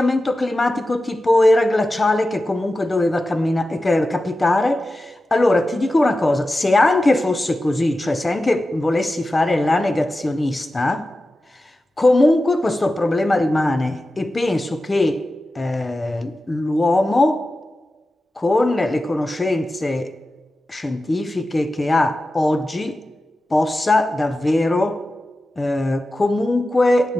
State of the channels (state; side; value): normal; both; correlation 0.93